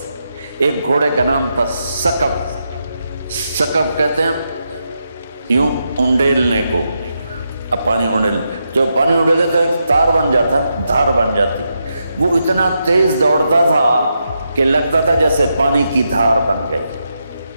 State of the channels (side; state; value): both; inverted; correlation -0.84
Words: ایک گھوڑے کا نام تھا سکب، سکب کہتے ہیں یوں انڈیلنے کو، اب پانی انڈیل، جو پانی انڈیلے تو ایک تار بن جاتا، دھار بن جاتی، وہ اتنا تیز دوڑتا تھا کہ لگتا تھا جیسے پانی کی دھار بن گئی۔